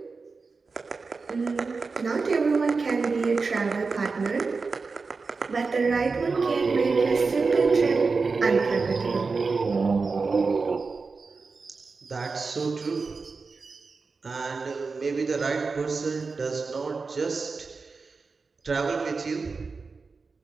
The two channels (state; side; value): quieter; left; 4.4 dB